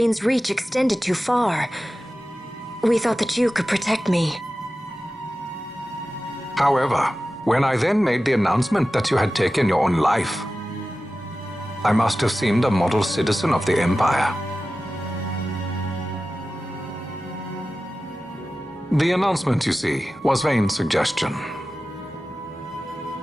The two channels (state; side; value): normal; both; correlation 0.95